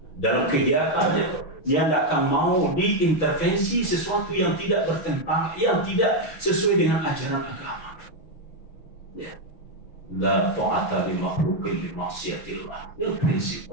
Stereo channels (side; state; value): right; late; 6.1 ms